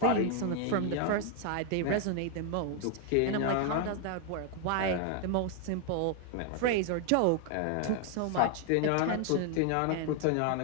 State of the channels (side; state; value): both; different; correlation 0.00